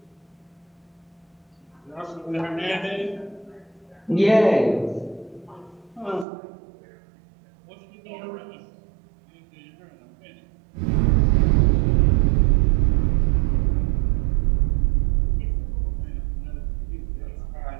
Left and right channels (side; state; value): left; drops out; at 6.2 s